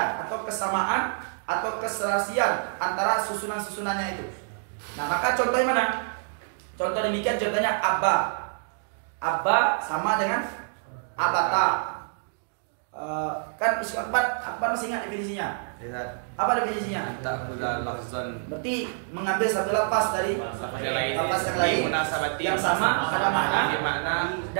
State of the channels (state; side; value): silent; left; digital silence